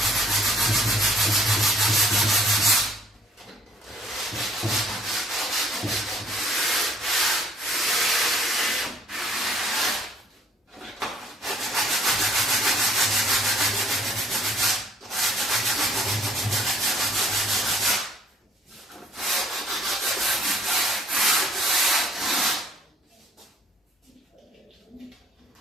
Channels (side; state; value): both; normal; correlation 0.59